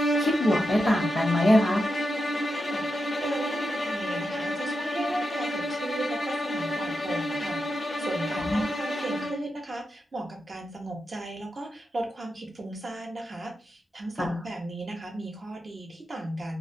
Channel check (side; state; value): both; normal; correlation 0.88